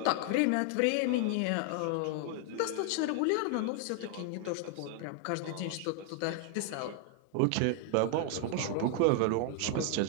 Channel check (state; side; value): different; both; correlation 0.00